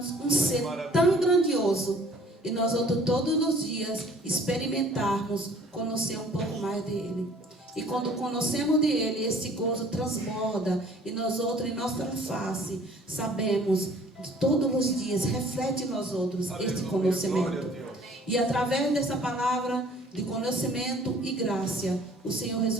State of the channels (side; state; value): both; normal; correlation 0.54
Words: um ser tão grandioso e nós outros todos os dias experimentarmos conhecer um pouco mais dele. E quando conhecemos dele, esse gozo transborda e nós outros em nossa face sabemos todos os dias reflete em nós outros este conhecimento. E através dessa palavra de conhecimento e graça, o Senhor